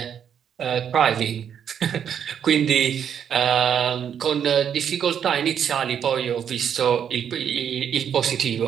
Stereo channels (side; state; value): left; quieter; 8.4 dB